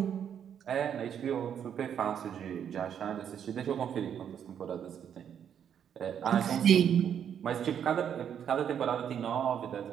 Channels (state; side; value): quieter; left; 8.7 dB